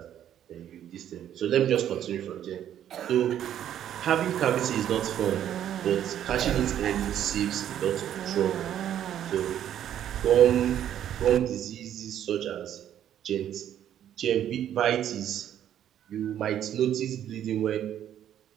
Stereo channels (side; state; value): left; quieter; 10.6 dB